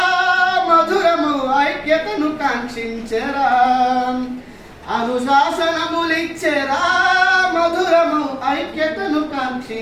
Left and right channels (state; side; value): identical; both; correlation 1.00